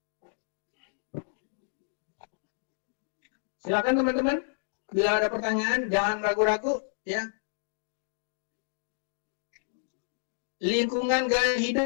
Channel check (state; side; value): silent; right; digital silence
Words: Silakan teman-teman, bila ada pertanyaan jangan ragu-ragu, ya. Lingkungan gaya